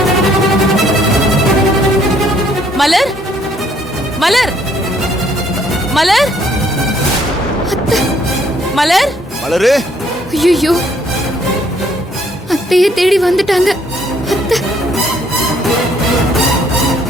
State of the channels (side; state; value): both; normal; correlation 0.65